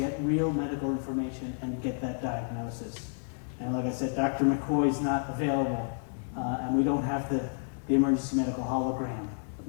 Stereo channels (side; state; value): right; silent; digital silence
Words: real medical information, and get that diagnosis. And like I said, Dr. McCoy is not available, and we don't have the emergency medical hologram